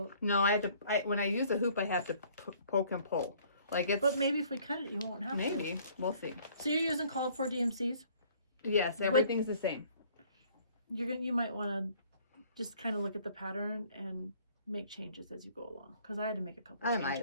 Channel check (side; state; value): both; inverted; correlation -0.58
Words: No, I have to. When I use a hoop, I have to poke and pull. Like it's. But maybe if we cut it, you won't have to. Maybe we'll see. So you're using called for DMCs? Yes, everything's the same. You might want to just kind of look at the pattern and make changes as you go along, because I had to make a couple changes. I